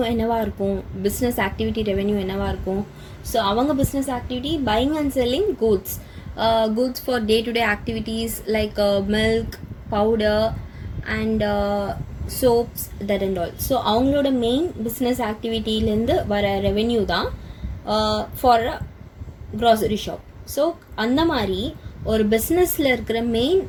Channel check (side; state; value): both; identical; correlation 1.00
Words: என்னவா இருக்கும், business activity revenue என்னவா இருக்கும். So அவங்க business activity buying and selling goods for day-to-day activities like milk, powder and soaps, that and all. So அவங்களோட main business activityலேருந்து வர revenue தான் for a grocery shop. So அந்த மாதிரி ஒரு பிஸ்னஸில் இருக்கிற மெயின்